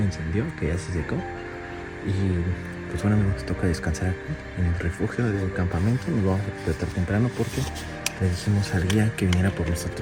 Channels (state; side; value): identical; both; correlation 1.00